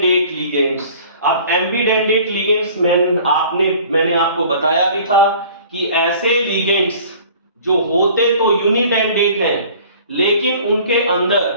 लिगेंड्स। अब एम्बिडेंडेट लिगेंड्स मैंने आपको बताया भी था कि ऐसे लिगेंड्स जो होते तो यूनिडेंडेट हैं लेकिन उनके अंदर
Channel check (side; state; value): both; inverted; correlation -0.48